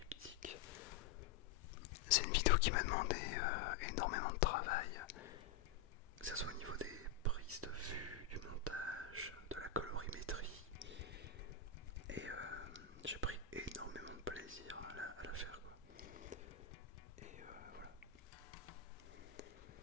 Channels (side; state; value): right; quieter; 6.9 dB